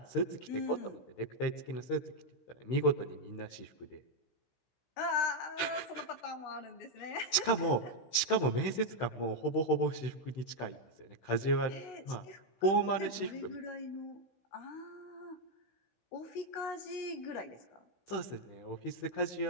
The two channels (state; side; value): late; right; 16 ms